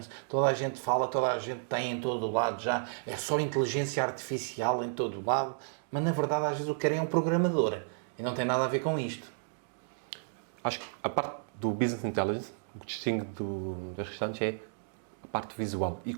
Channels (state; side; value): silent; left; digital silence